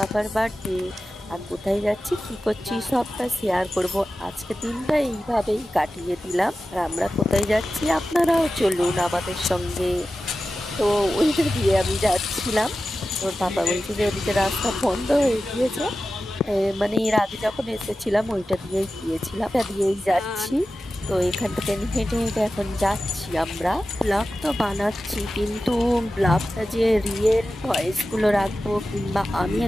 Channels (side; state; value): both; normal; correlation 0.94